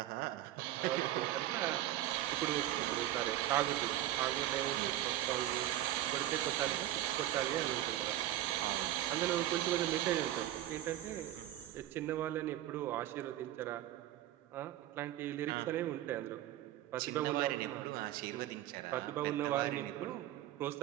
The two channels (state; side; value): quieter; left; 13.5 dB